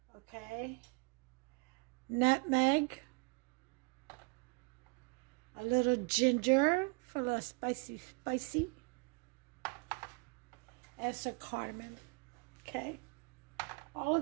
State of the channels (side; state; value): left; quieter; 34.2 dB